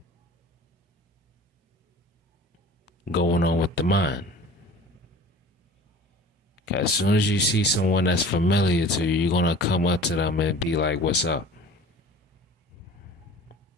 going on with the mind. As soon as you see someone that's familiar to you, you're gonna come up to them and be like, "What's up?"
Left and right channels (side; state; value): both; normal; correlation 0.43